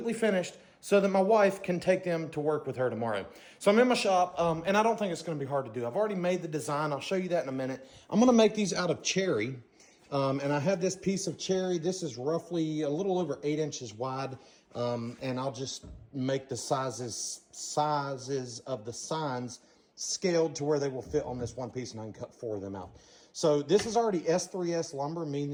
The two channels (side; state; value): both; identical; correlation 1.00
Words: finished, so that my wife can take them to work with her tomorrow. So I'm in my shop, and I don't think it's going to be hard to do. I've already made the design. I'll show you that in a minute. I'm going to make these out of cherry, and I have this piece of cherry. This is roughly a little over 8 inches wide, and I'll just make the sizes of the signs scaled to where they will fit on this one piece, and I can cut 4 of them out. So this is already S3S lumber,